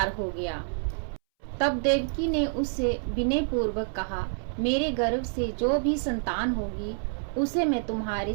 हो गया। तब देवकी ने उससे विनय पूर्वक कहा, मेरे गर्भ से जो भी संतान होगी उसे मैं तुम्हारे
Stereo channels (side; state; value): left; silent; 59 dB below the other